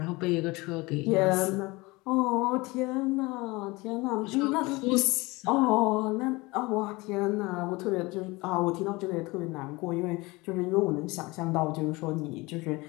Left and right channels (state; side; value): quieter; right; 23.2 dB